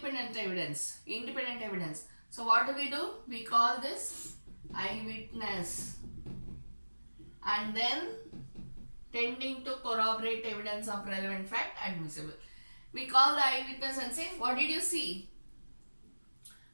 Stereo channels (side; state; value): both; inverted; correlation -1.00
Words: evidence. So what do? We call this eyewitness, and then tending to corroborate evidence of relevant fact admissible. We call the eyewitness and say, what did you see?